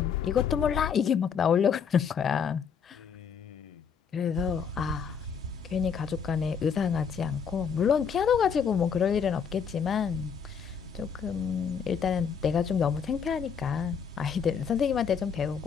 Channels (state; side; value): quieter; right; 6.8 dB